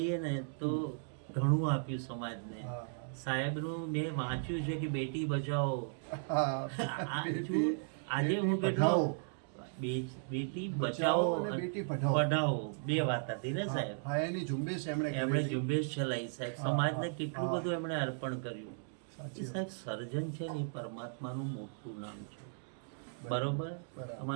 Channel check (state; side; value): silent; left; digital silence